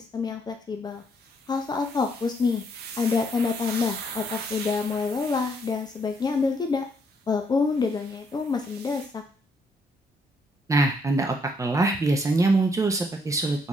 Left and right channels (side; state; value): both; normal; correlation 0.71